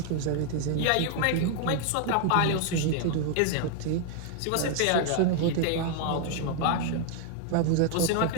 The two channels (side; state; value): both; different; correlation 0.00